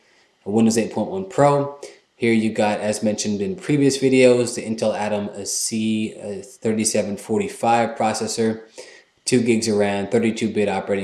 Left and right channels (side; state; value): both; identical; correlation 1.00